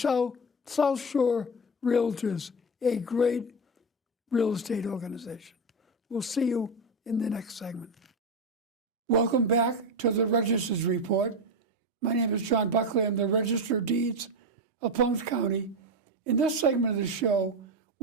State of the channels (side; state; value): both; normal; correlation 0.15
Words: Shore Realtors, a great real estate organization. We'll see you in the next segment. Welcome back to the Register's Report. My name is John Buckley. I'm the Register of Deeds of Plymouth County. In this segment of the show,